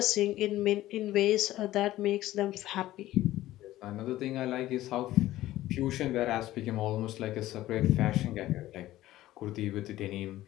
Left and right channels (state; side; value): quieter; right; 15.3 dB